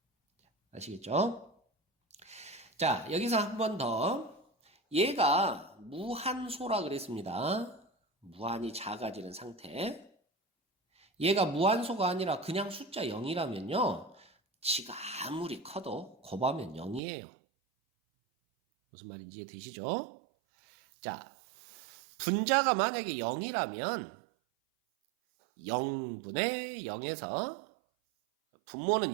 아시겠죠? 자, 여기서 한 번 더. 얘가 무한소라 그랬습니다. 무한히 작아지는 상태. 얘가 무한소가 아니라 그냥 숫자 0이라면요. 지가 아무리 커도 곱하면 0이에요. 무슨 말인지 이해되시죠? 자, 분자가 만약에 0이라면 0분의 0에서 분모는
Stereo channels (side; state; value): left; drops out; at 17.0 s